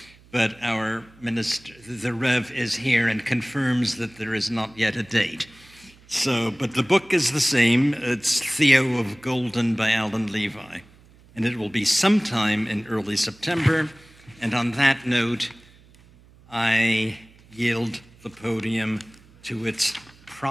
but our minister, the Rev, is here and confirms that there is not yet a date. So, but the book is the same. It's Theo of Golden by Alan Levi, and it will be sometime in early September. And on that note, I yield the podium to its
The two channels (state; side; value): noise; right; hum, 26 dB below the sound